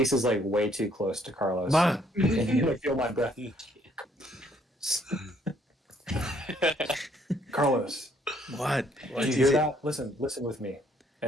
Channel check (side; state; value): both; normal; correlation 0.66